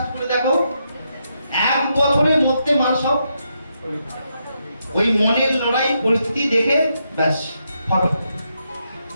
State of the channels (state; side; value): inverted; both; correlation -0.81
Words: করে দেখো, 1 বছরের মধ্যে মানুষ সব ওই মনের লড়াই পরিস্থিতি দেখে ব্যাস ফটো